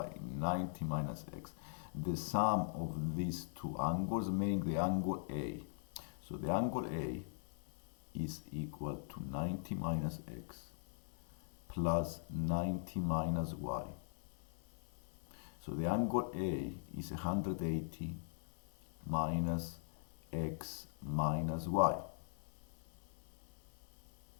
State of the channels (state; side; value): silent; right; 50 dB below the other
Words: 90 minus x. The sum of these two angles make the angle A. So the angle A is equal to 90 minus x plus 90 minus y. So the angle A is 180 minus x minus y.